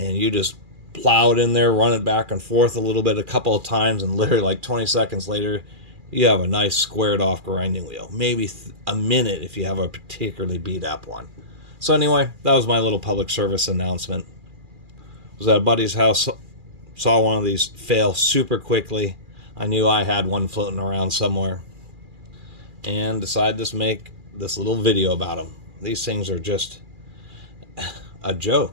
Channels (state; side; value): late; left; 2.4 ms